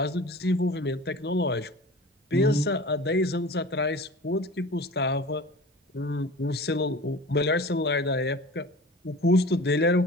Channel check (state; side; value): normal; both; correlation 0.39